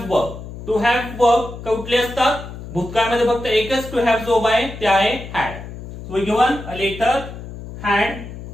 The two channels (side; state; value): left; noise; hum, 12 dB below the sound